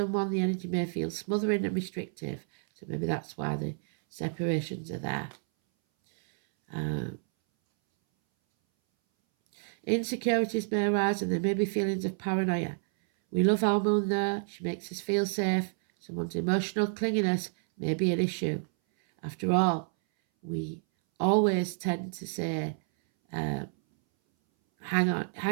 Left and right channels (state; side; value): silent; left; 58 dB below the other